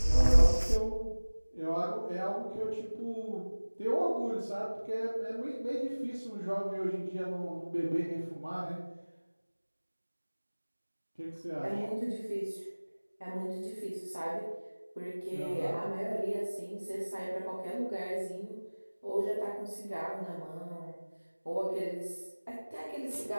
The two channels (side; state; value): both; inverted; correlation -1.00